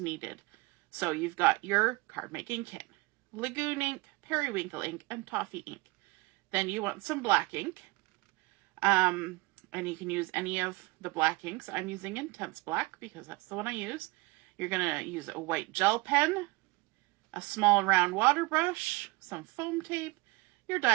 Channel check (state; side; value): quieter; left; 23.6 dB